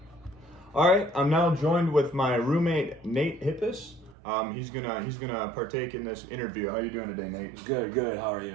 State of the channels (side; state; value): left; drops out; at 4.2 s